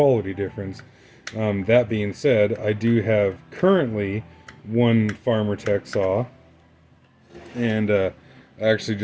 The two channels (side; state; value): both; identical; correlation 1.00